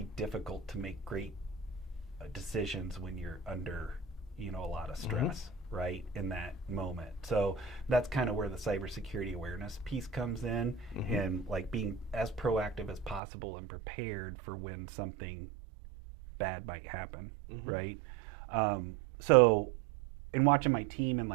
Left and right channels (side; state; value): left; drops out; at 13.2 s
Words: difficult to make great decisions when you're under, a lot of stress, right, in that moment. So that's kind of where the cybersecurity awareness piece comes in, and like being as proactive as possible and prepared for when something bad might happen, right? So in watching my team and